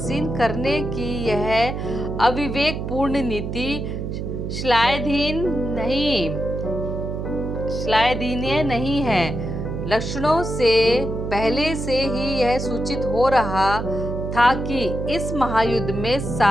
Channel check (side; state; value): right; noise; hum, 4 dB below the sound